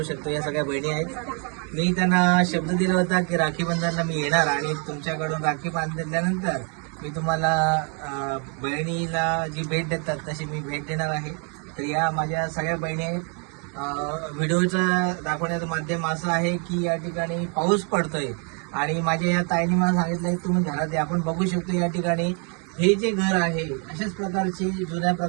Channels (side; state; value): left; quieter; 38.1 dB